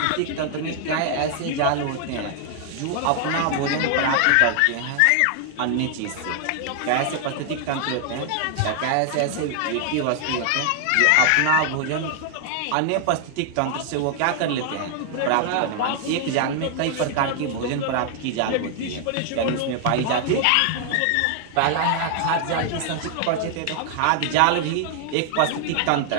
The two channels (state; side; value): different; both; correlation 0.00